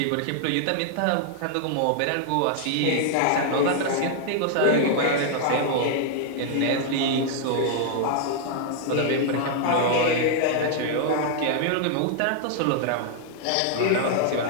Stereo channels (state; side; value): different; both; correlation -0.01